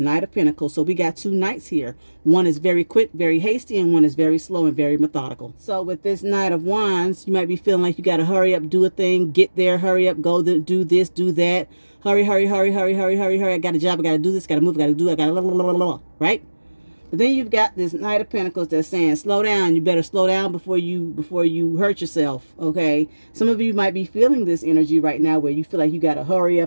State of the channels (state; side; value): inverted; both; correlation -1.00